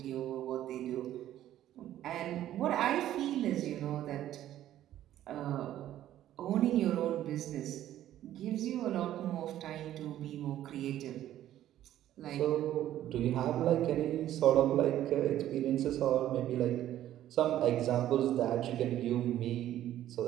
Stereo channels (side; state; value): left; quieter; 12.6 dB